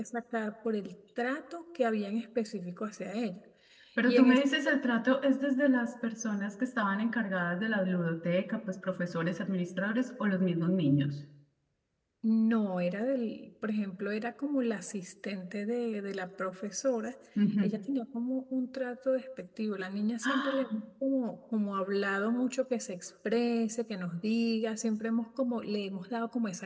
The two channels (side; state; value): both; identical; correlation 1.00